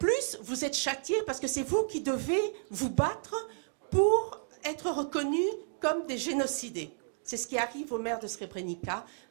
vous êtes châtiés parce que c'est vous qui devez vous battre pour être reconnus comme des génocidés. C'est ce qui arrive au maire de Srebrenica,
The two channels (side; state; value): left; silent; digital silence